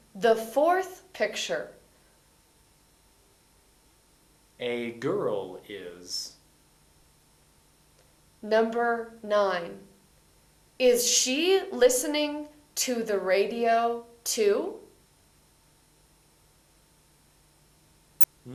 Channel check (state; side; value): identical; both; correlation 1.00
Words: the fourth picture? A girl is. Number 9. Is she listening to the radio too?